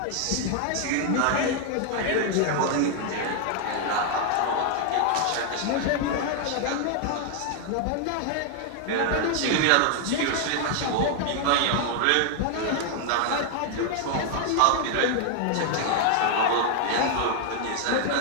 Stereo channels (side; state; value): both; different; correlation 0.00